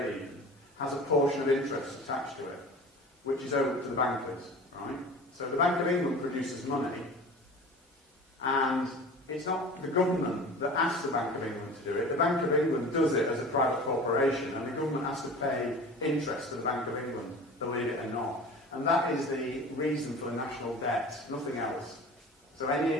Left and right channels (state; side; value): normal; both; correlation 0.39